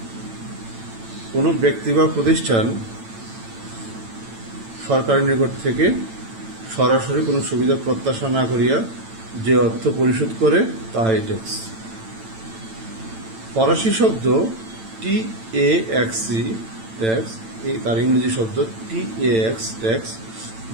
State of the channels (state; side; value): late; left; 8.9 ms